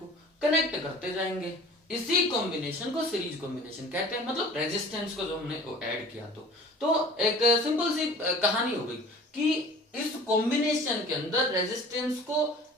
कनेक्ट करते जाएंगे। इसी कॉम्बिनेशन को सीरीज कॉम्बिनेशन कहते हैं। मतलब रेजिस्टेंस को जो हमने ऐड किया, तो एक सिंपल सी कहानी हो गई कि इस कॉम्बिनेशन के अंदर रेजिस्टेंस को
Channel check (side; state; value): both; normal; correlation 0.44